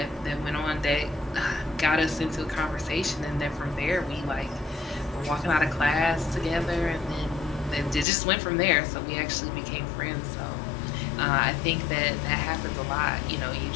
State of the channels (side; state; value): right; drops out; at 8.1 s